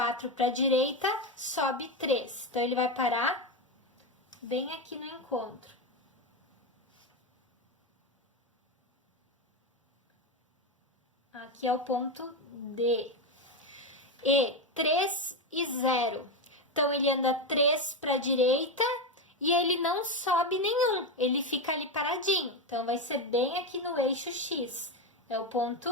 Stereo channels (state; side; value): normal; both; correlation 0.12